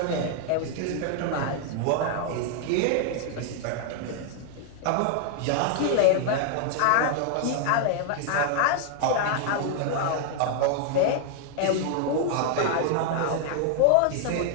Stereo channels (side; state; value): both; different; correlation 0.00